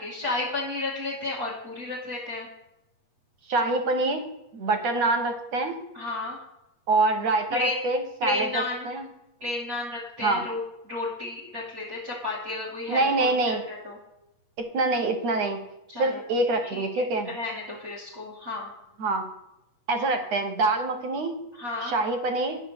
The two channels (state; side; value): late; left; 8.4 ms